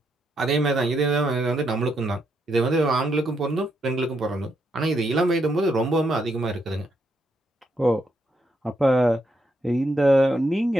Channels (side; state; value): both; normal; correlation 0.78